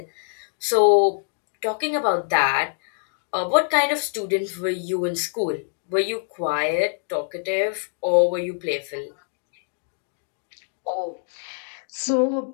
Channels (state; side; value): silent; right; digital silence